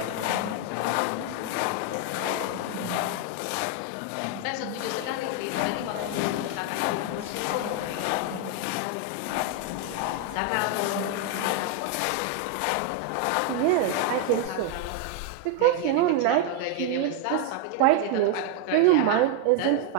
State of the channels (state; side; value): different; both; correlation 0.01